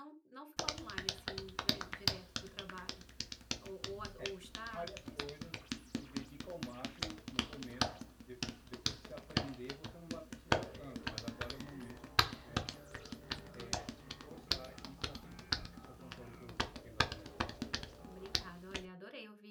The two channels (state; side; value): identical; both; correlation 1.00